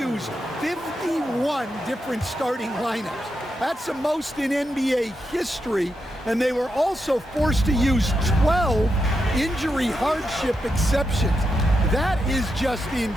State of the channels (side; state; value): both; normal; correlation 0.85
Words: 51 different starting lineups. That's the most in NBA history. And they were also forced to use 12 injury hardship exceptions. That is just